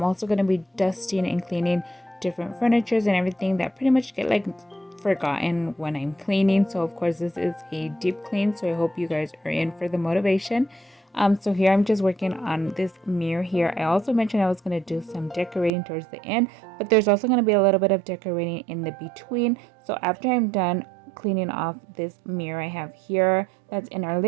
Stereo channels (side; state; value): left; drops out; at 15.7 s